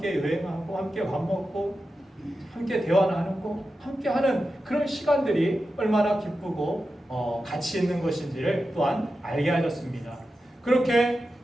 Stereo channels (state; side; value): normal; both; correlation 0.91